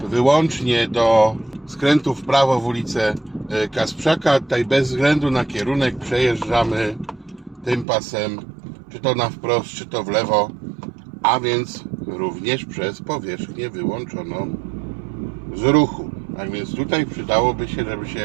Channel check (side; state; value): left; drops out; at 7.9 s